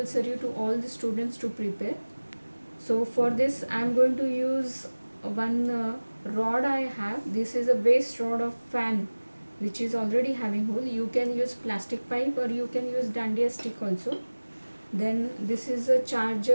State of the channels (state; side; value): inverted; both; correlation -1.00